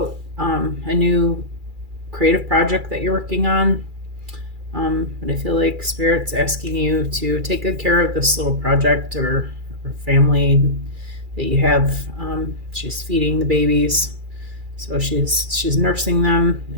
a new creative project that you're working on. But I feel like Spirit's asking you to take good care of this little project or family that you have. She's feeding the babies, so she's nursing them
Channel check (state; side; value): late; left; 2.4 ms